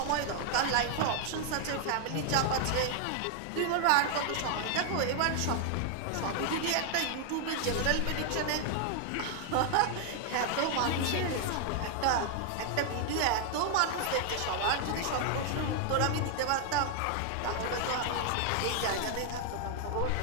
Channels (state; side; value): different; both; correlation 0.00